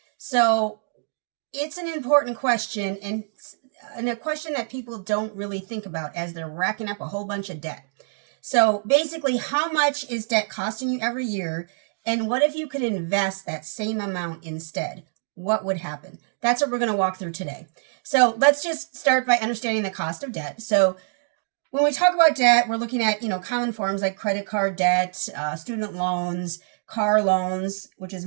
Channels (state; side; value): silent; left; digital silence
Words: So it's an important question and a question that people don't really think about as they're racking up a whole bunch of debt. So basically, how much is debt costing you every year? And what if you could invest that same amount instead? What would happen? That's what we're going to walk through today. So let's just start by understanding the cost of debt. So when we talk about debt, we're looking at, common forms like credit card debt, student loans, car loans, which is